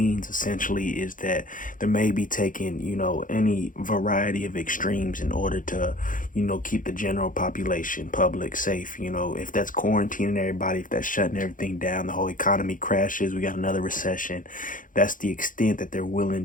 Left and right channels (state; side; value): late; right; 0.39 ms